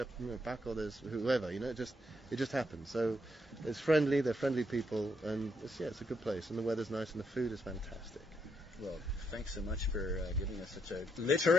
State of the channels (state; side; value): normal; both; correlation 0.77